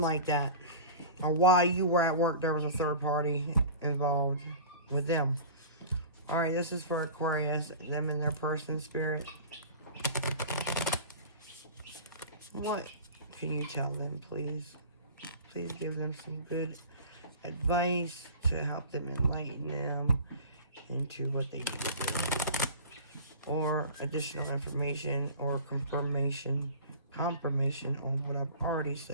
like that. Or why you were at work, there was a third party involved with them. Alright, this is for Aquarius, them and their person, Spirit. What can you tell them, please? Please give them some good advice to help them enlighten them into what they need to do. Or additional information or confirmation on what I've already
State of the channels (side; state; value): both; inverted; correlation -0.37